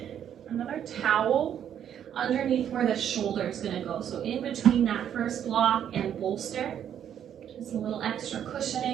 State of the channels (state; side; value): quieter; left; 9.5 dB